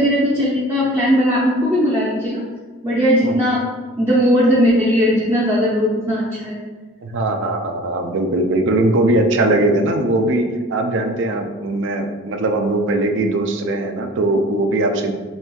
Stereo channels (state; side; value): normal; both; correlation 0.45